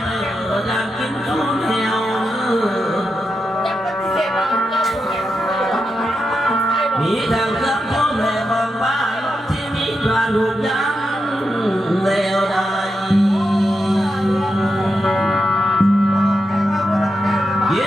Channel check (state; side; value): normal; both; correlation 0.87